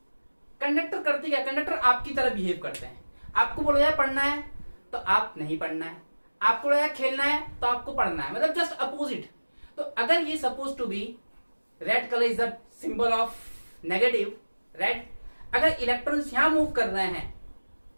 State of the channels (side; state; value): both; inverted; correlation -1.00